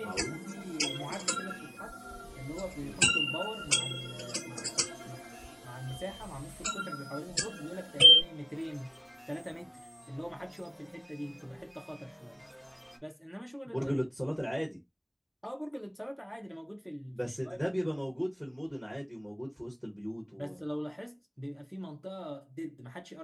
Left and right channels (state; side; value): identical; both; correlation 1.00